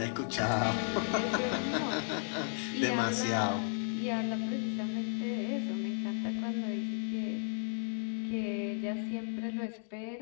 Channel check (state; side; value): silent; right; 55 dB below the other